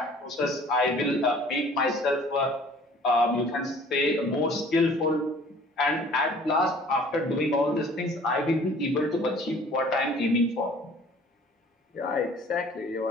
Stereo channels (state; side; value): normal; both; correlation 0.51